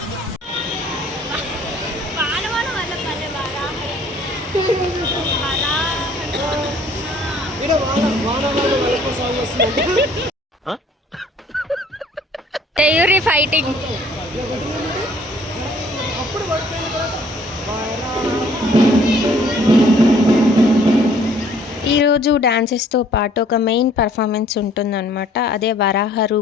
తెయూరి ఫైటింగ్. ఈరోజు డాన్సెస్తో పాటు ఒక మెయిన్ పర్ఫార్మెన్స్ ఉంటుందన్నమాట. అదే వరాహ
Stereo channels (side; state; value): both; normal; correlation 0.58